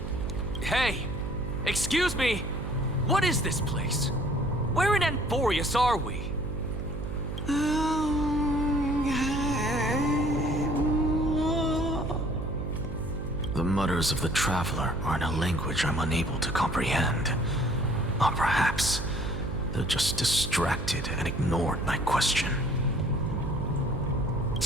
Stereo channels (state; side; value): noise; right; hum, 6 dB below the sound